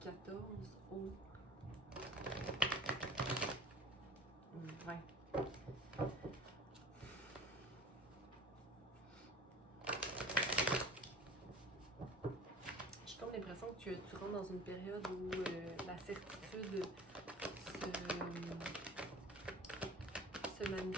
14 au 20. J'ai comme l'impression que tu rentres dans une période où la certitude se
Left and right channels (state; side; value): normal; both; correlation 0.42